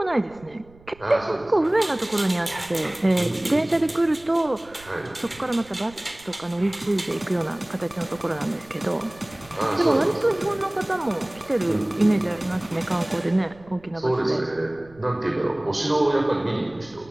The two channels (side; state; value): right; noise; rumble, 25 dB below the sound